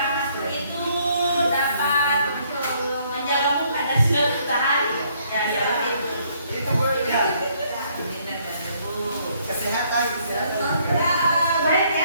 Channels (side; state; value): both; inverted; correlation -0.67